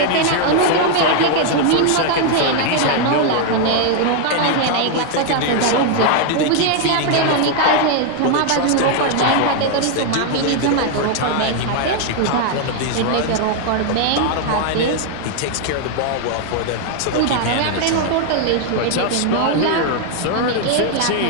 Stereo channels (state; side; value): different; both; correlation 0.00